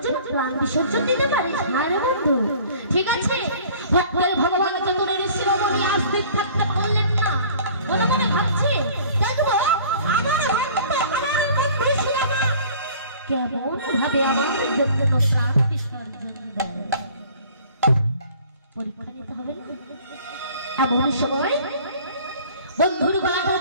জন্য প্রাণ বিসর্জন দিতে পারিস? হ্যাঁ রে বন্ধু, ঠিক আছে। ভক্তের ভগবান চতুরের শিরোমণি আস্তিক থাকতে পারলেন না, মনে মনে ভাবছে দেখবো আমার ভক্ত, আমার বন্ধু শিলামা কেমন ভাবে আমার জন্য প্রাণ বিসর্জন দেয়। পরীক্ষা নিতে হবে না? এমন সময় বন্ধুর গলাটা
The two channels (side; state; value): both; inverted; correlation -0.49